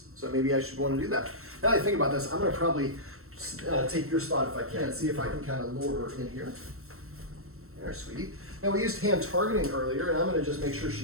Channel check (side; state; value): left; late; 0.63 ms